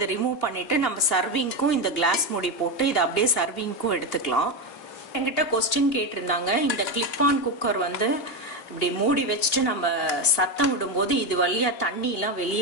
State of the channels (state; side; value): late; right; 2.9 ms